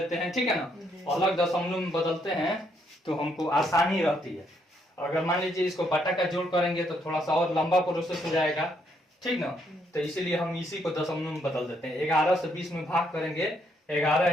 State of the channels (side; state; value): both; normal; correlation 0.73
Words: हैं। ठीक है ना, अलग दशमलव में बदलते हैं तो हमको आसानी रहती है। अगर मान लीजिए इसको बटा का जोड़ करेंगे तो थोड़ा सा और लंबा प्रोसेस हो जाएगा। ठीक ना, तो इसीलिए हम इसी को दशमलव में बदल देते हैं। 11 से 20 में भाग करेंगे 11